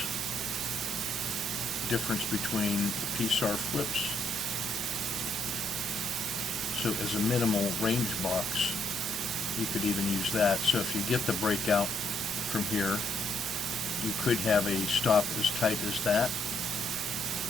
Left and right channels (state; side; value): normal; both; correlation 0.72